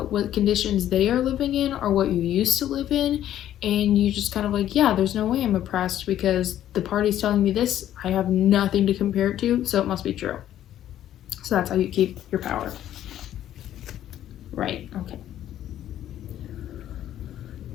what conditions they are living in or what you used to live in. And you just kind of like, yeah, there's no way I'm oppressed because the party's telling me this. I have nothing to compare it to, so it must be true. So that's how you keep your power. Right, okay.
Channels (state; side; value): quieter; right; 11.8 dB